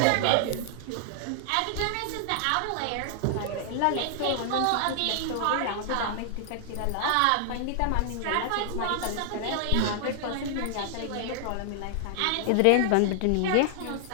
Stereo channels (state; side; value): different; both; correlation -0.01